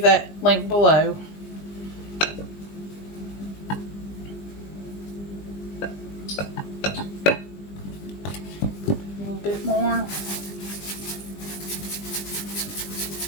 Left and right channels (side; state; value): right; late; 20 ms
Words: that link below. A little bit more.